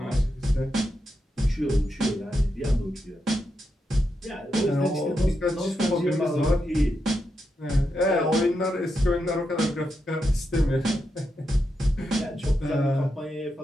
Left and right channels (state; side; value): normal; both; correlation 0.85